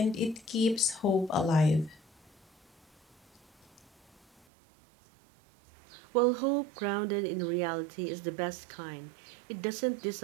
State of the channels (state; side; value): drops out; left; at 4.5 s